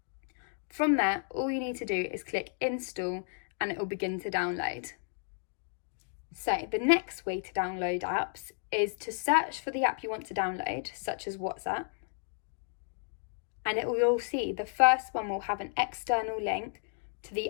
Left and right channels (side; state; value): right; silent; digital silence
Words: From there, all you need to do is click install and it will begin to download. So, the next way to download apps is to search for the app you want to download, such as WhatsApp, and you'll see the first one will have an external link to the